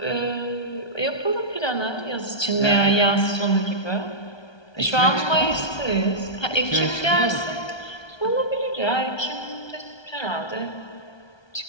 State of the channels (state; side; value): late; right; 1.2 ms